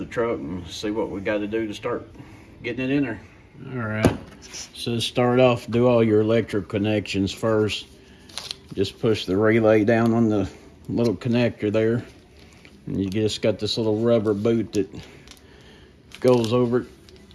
truck and see what we got to do to start getting it in there. All right, so start off, do all your electric connections first. Just push the relay down on the little connector there, and you just got this little rubber boot that goes over it.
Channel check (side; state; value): both; identical; correlation 1.00